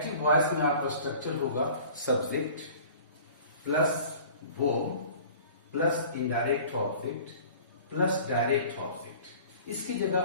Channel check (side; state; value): both; inverted; correlation -0.46